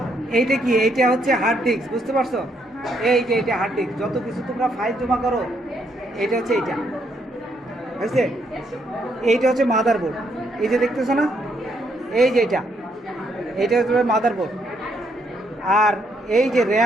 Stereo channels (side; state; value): both; normal; correlation 0.73